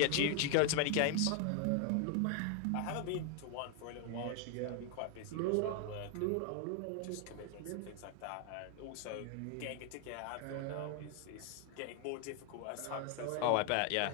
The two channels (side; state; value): both; different; correlation 0.01